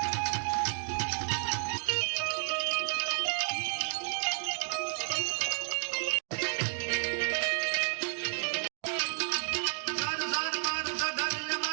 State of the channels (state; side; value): silent; left; digital silence